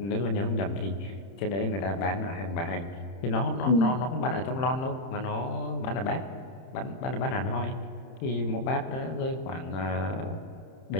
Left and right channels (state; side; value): late; right; 31 ms